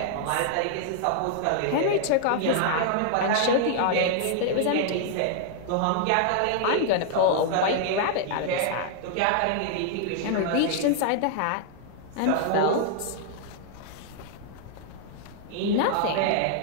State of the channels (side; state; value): both; different; correlation 0.00